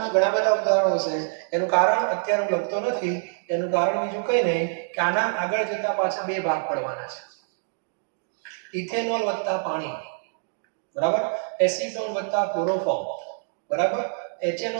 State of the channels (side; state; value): left; silent; digital silence